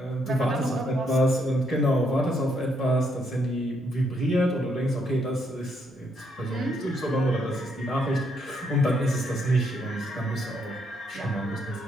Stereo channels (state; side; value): normal; both; correlation 0.74